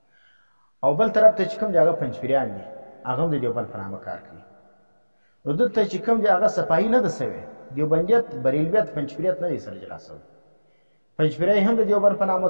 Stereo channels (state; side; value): inverted; both; correlation -1.00